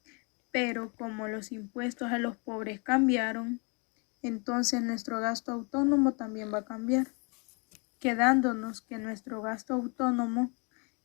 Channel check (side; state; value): right; quieter; 33.4 dB